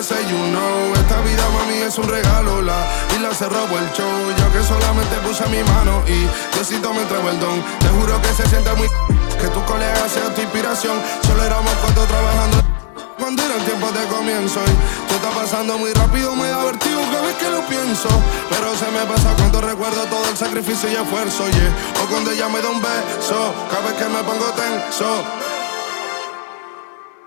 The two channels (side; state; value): right; silent; digital silence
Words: you know. Esta vida, mami, es un regalo. La isla se robó el show, yo que solamente puse mi mano y Diosito me entregó el don. Te juro que se siente muy... que tu colega sea tu inspiración. Solo éramos 4 trabajando cuando eran tiempos de comienzo y todo está pasando muy rápido, me da vertigo cada vez que lo pienso. Pero se me pasa cuando recuerdo todo el sacrificio y esfuerzo, yeah. O cuando ella me da un beso, cada vez que me pongo tenso.